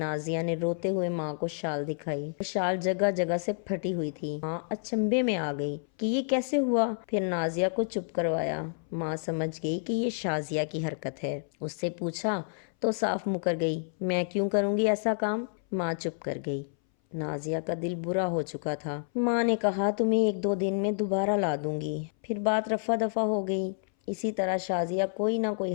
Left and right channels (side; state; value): right; silent; 58 dB below the other